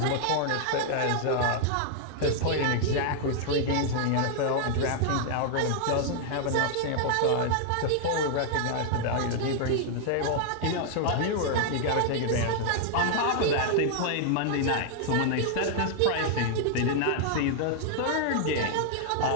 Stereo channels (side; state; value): both; different; correlation -0.01